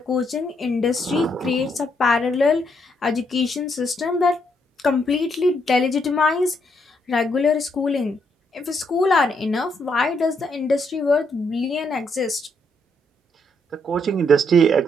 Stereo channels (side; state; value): both; normal; correlation 0.75